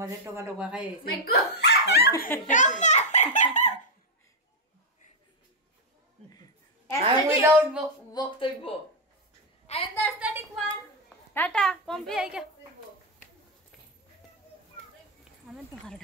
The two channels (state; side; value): normal; both; correlation -0.01